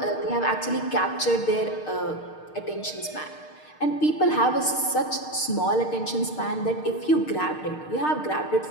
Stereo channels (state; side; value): late; right; 6.5 ms